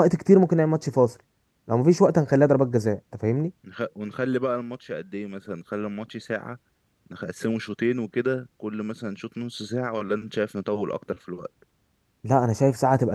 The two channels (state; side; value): identical; both; correlation 1.00